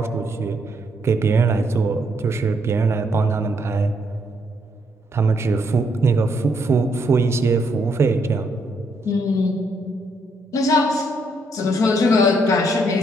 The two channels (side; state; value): both; normal; correlation 0.73